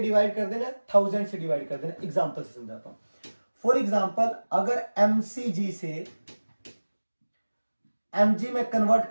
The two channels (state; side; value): inverted; both; correlation -1.00